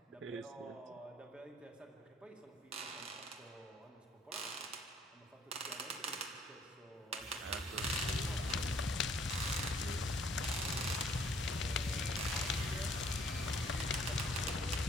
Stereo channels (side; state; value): both; normal; correlation 0.61